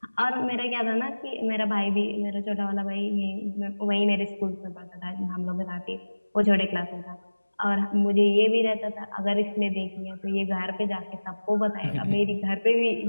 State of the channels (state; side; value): inverted; both; correlation -1.00